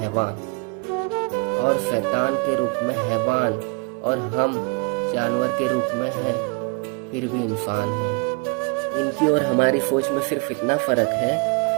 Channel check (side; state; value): left; quieter; 32.5 dB